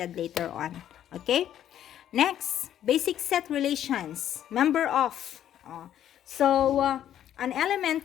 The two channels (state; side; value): quieter; right; 10.9 dB